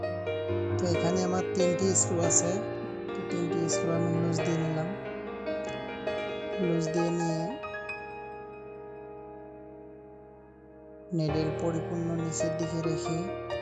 তো এখানে আমার 3টি স্ক্রু আছে। তো 3টি স্ক্রু আমি লুজ দিয়ে নিলাম। লুজ দিয়ে নিয়ে নিডেল পরিপূর্ণ নিচের দিকে রেখে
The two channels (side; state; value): both; identical; correlation 1.00